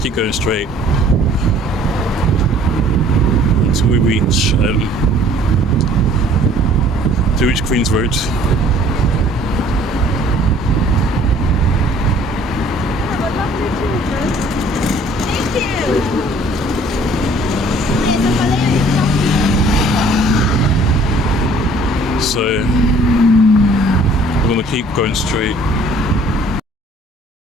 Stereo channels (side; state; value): both; normal; correlation 0.55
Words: keep going straight until we reach Queen's Road. Have a lovely children. Thank you. So we're gonna keep going straight.